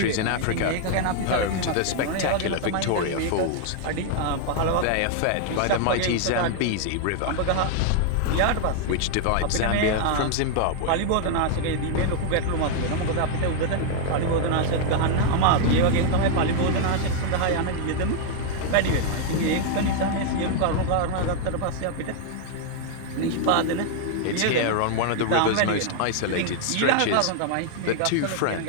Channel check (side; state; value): both; different; correlation 0.00